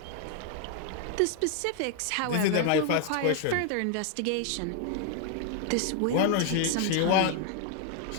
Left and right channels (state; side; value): different; both; correlation 0.00